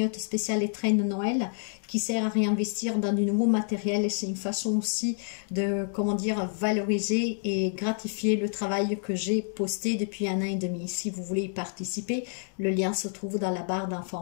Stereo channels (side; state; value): right; silent; 59 dB below the other